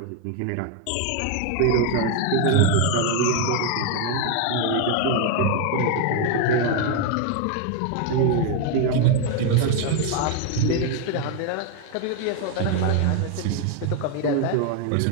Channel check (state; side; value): different; both; correlation 0.01